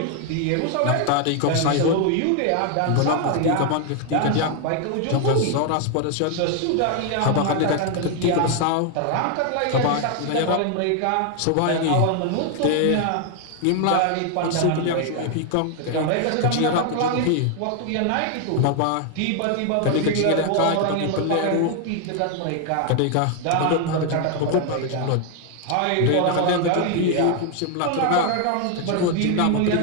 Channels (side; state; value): both; different; correlation 0.00